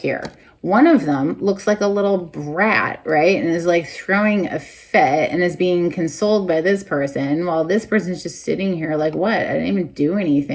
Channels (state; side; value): identical; both; correlation 1.00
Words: One of them looks like a little brat, right? And is like throwing a fit and is being consoled by this person, while this person's just sitting here like, what? I didn't even do